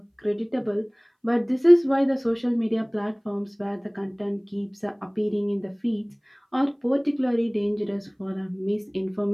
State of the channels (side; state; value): both; identical; correlation 1.00